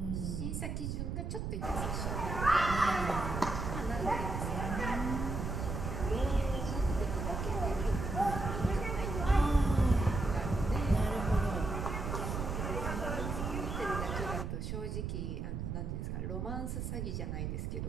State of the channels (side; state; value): right; noise; rumble, 3 dB below the sound